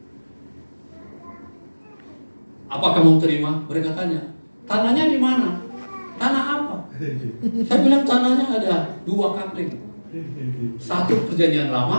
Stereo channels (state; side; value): inverted; both; correlation -1.00